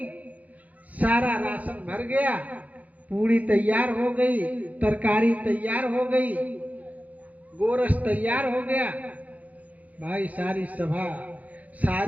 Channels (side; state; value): left; late; 0.075 ms